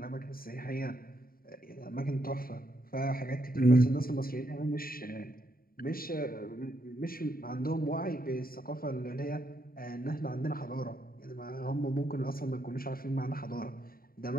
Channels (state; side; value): late; right; 0.43 ms